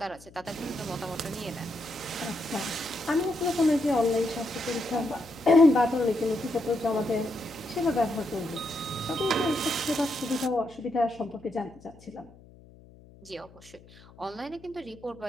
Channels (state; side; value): noise; left; hum, 23 dB below the sound